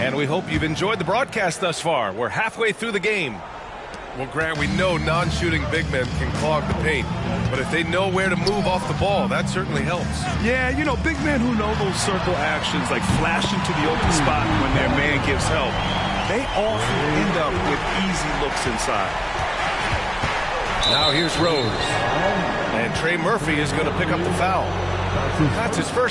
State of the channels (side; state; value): both; identical; correlation 1.00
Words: we hope you've enjoyed the broadcast thus far. We're halfway through the game. Well, Grant, we know non-shooting big men can clog the paint, but if they know where to move off the ball, that certainly helps. Yeah, you know, big men who know those circle actions, like flashing to the open spot when their man gives help, they often end up with easy looks inside. Now here's Rose. And Trey Murphy is going to pick up the foul. That's his